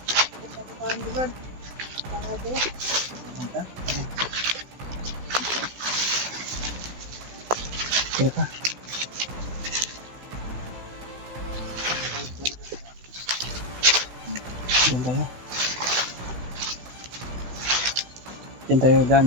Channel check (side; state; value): left; late; 16 ms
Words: Paano ba? Paano ba? Manta? Kira ka. Diyan tayo. Diyan tayo daan,